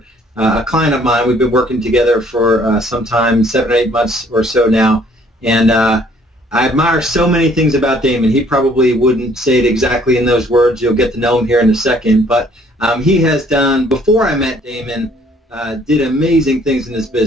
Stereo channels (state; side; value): normal; both; correlation 0.61